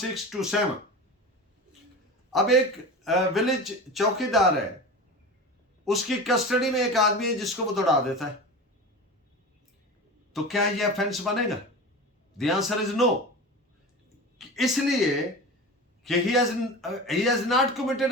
अब एक विलेज चौकीदार है, उसकी कस्टडी में एक आदमी है जिसको वो दौड़ा देता है, तो क्या ये ऑफेंस बनेगा? द आंसर इज नो, इसलिए कि he has not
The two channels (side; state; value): both; normal; correlation 0.30